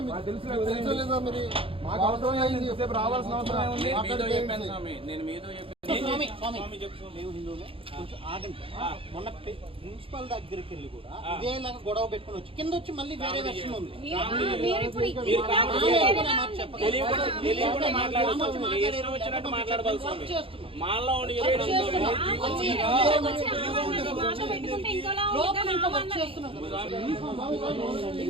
మాకు అవసరం లేదు, రావాల్సిన అవసరం ఉంది. నేను మీతో మొన్న ప్రిన్సిపల్ దగ్గరికి వెళ్ళి కూడా ఇదేలాగా గొడవ పెట్టుకుని వచ్చి కింద వచ్చి మళ్ళీ వేరే వెర్షన్ ఉంది.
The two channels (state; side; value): late; left; 0.27 ms